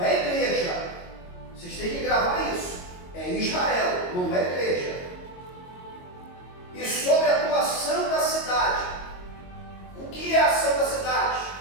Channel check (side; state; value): right; late; 22 ms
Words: é igreja. Vocês têm que gravar isso. É Israel, não é igreja. E sobre a tua santa cidade. O que é a santa cidade?